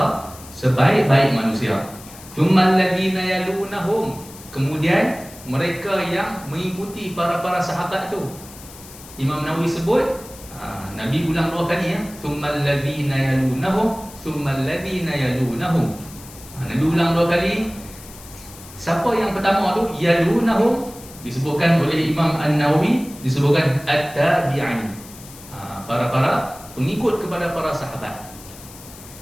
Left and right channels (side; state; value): left; noise; hiss, 18 dB below the sound